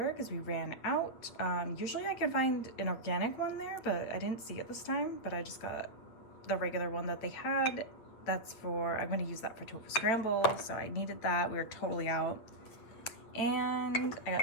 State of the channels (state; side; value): late; right; 8.4 ms